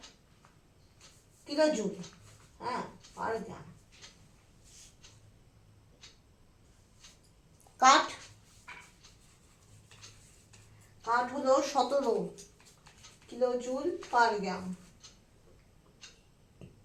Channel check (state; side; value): identical; both; correlation 1.00